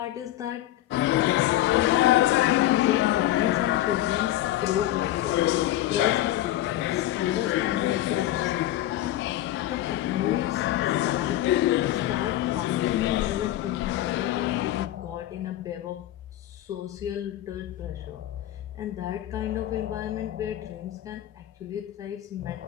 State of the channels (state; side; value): quieter; right; 14.2 dB